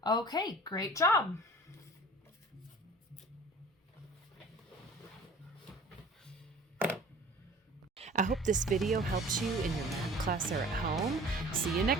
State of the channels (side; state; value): both; normal; correlation 0.46